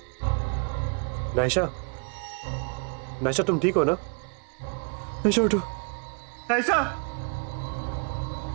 नायशा, नायशा तुम ठीक हो ना? नायशा उठो। नायशा!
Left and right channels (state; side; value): quieter; left; 38.1 dB